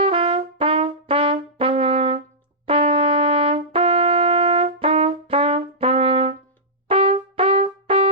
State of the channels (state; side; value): normal; both; correlation -0.15